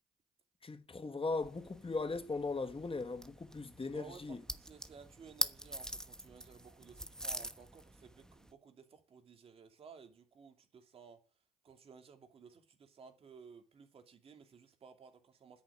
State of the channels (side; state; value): both; normal; correlation 0.37